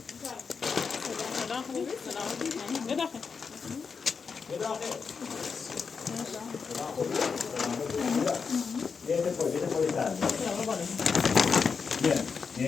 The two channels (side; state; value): right; quieter; 5.5 dB